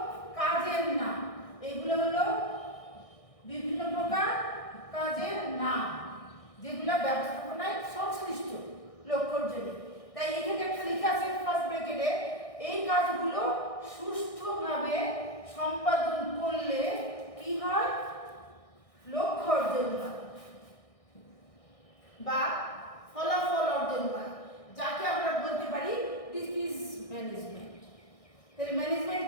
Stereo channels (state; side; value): late; right; 1.6 ms